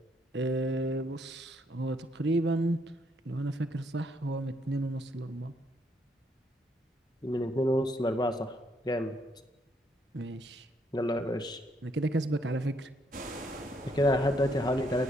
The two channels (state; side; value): normal; both; correlation 0.72